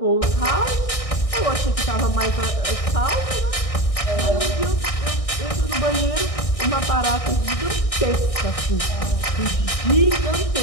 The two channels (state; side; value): late; right; 1.6 ms